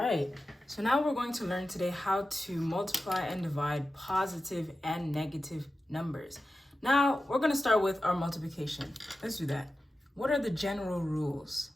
so now we're going to learn today how to multiply and divide positive and negative numbers. Now, we're going to start with our multiplication. Let's do that. What are the general rules?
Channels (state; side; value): normal; both; correlation 0.93